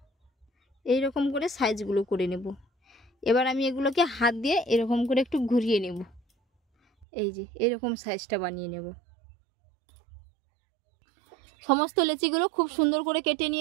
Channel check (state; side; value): drops out; left; at 7.1 s